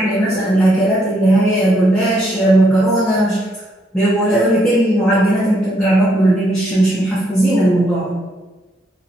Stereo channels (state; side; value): normal; both; correlation 0.74